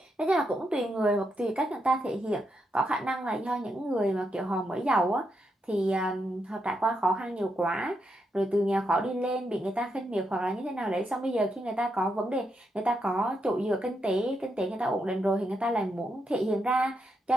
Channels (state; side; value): normal; both; correlation 0.82